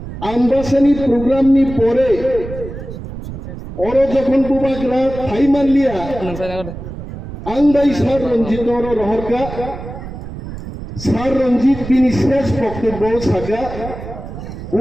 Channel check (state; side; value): noise; right; rumble, 10 dB below the sound